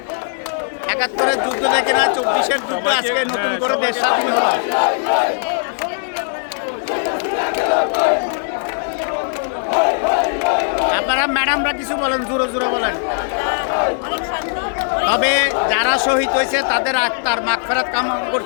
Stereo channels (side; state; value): right; silent; digital silence